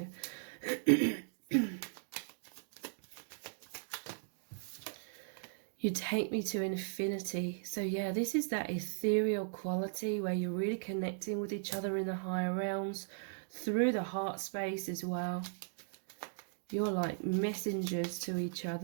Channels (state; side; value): silent; left; digital silence